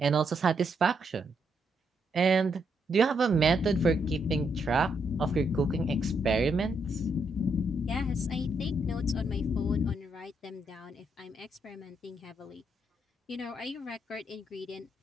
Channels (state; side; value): normal; both; correlation 0.77